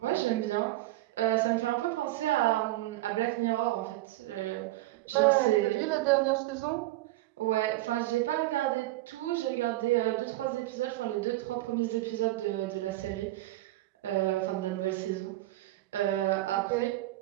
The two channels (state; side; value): quieter; left; 17.3 dB